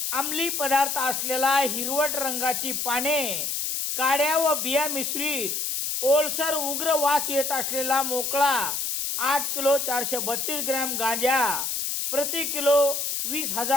अंमली पदार्थ असलेला हिरवट रंगाची पाने, काड्या व बिया मिश्रित ओलसर उग्र वास येत असलेला मोकळा 8 किलो 432 ग्रॅम गांजा, प्रति किलो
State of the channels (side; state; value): left; noise; hiss, 1 dB below the sound